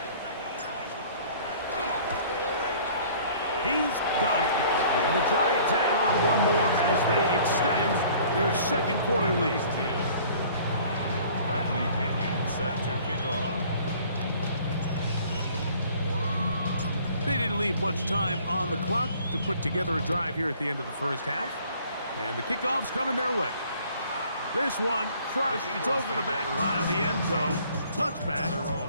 He's got it. And the Giants add on one more as they extend their second quarter lead. Bradley Pinion set to kick off. They didn't leave much time on the clock to put together a drive here at the end of the first half. And the kickoff's coming their way. This one crushed. It's over the back line of the end zone. Touchback.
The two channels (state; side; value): inverted; both; correlation -0.53